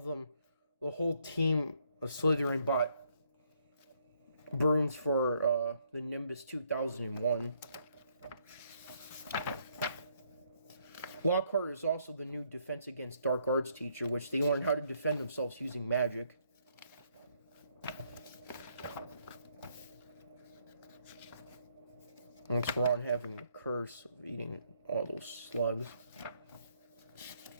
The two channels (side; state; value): both; inverted; correlation -0.70